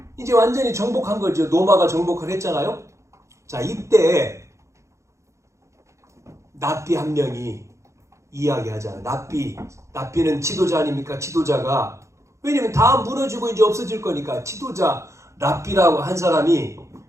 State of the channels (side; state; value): left; late; 0.14 ms